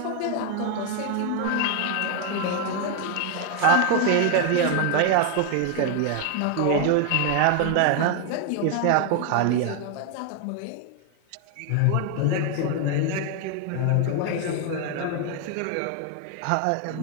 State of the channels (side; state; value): both; different; correlation 0.01